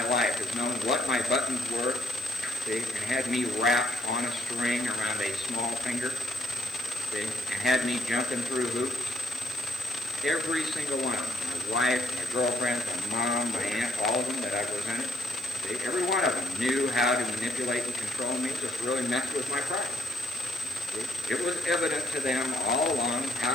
life has known what my buttons were, and had me wrapped on a string around a small finger, and had me jumping through hoops. Every single one of them, my wife, my girlfriend, my mom, my aunt, all of them that I presented, every one of them knew how to manipulate and control me, just really messed with my pride. It was evident to them all along how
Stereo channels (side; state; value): right; noise; hiss, 20 dB below the sound